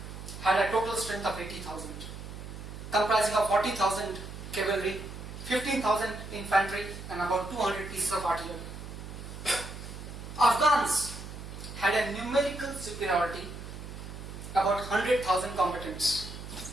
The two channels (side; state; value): right; noise; hum, 11 dB below the sound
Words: had a total strength of 80,000, comprising of 40,000 cavalry, 15,000 infantry, and about 200 pieces of artillery. Afghans had a numerical superiority, about 100,000 combatants,